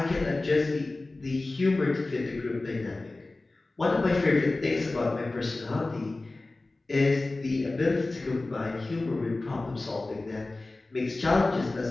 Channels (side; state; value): right; quieter; 3.1 dB